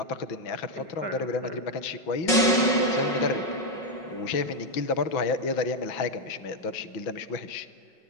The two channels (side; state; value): right; late; 5.5 ms